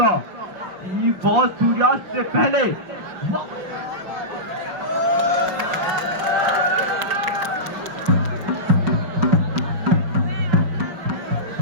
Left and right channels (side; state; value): left; late; 5.9 ms